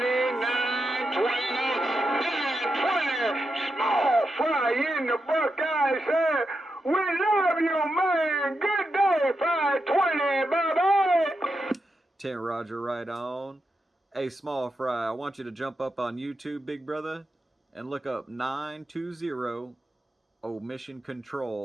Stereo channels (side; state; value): both; normal; correlation 0.86